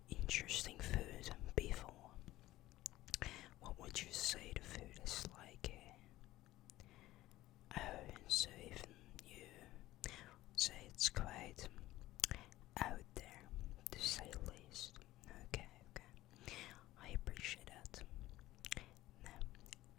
interesting food before. What would you say the food is like here? Oh, so even you say it's quite out there, to say the least. Okay. I appreciate that. Now,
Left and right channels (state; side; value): quieter; right; 16.3 dB